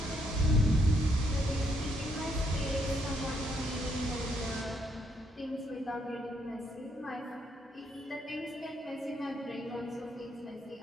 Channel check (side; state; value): both; normal; correlation 0.73